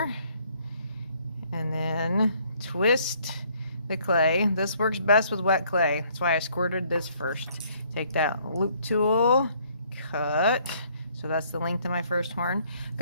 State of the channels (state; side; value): inverted; both; correlation -0.64